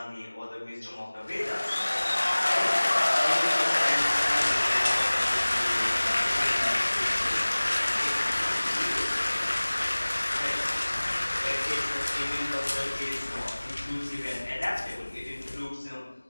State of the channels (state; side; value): inverted; both; correlation -1.00